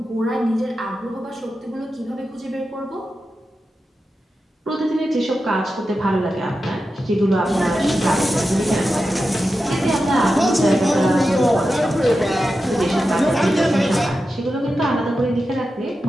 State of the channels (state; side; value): normal; both; correlation 0.91